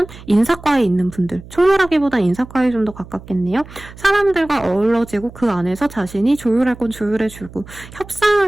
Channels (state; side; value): noise; right; hum, 18 dB below the sound